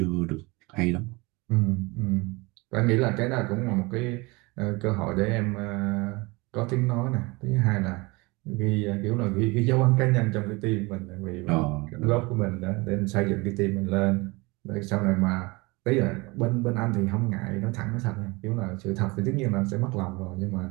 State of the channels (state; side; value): quieter; left; 25.1 dB